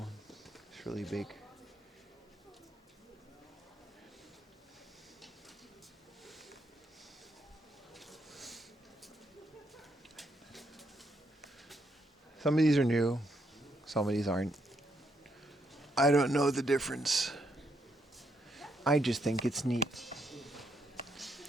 It's really big. Some of these are new. Some of these aren't. I don't know the difference. I just think it's neat.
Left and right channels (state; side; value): normal; both; correlation 0.76